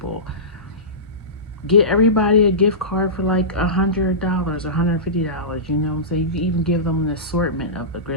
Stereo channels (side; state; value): both; normal; correlation -0.20